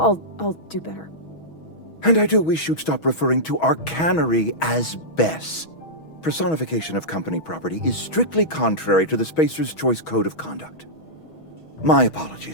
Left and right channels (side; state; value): right; late; 6.2 ms